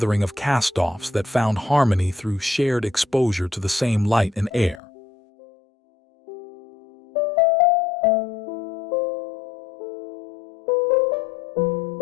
of cast-offs that found harmony through shared exposure to the same light and air.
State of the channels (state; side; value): drops out; right; at 4.8 s